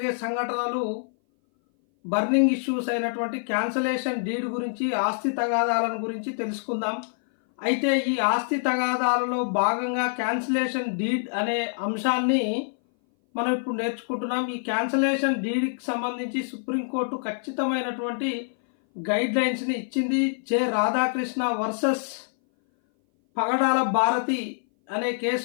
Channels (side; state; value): right; silent; 58 dB below the other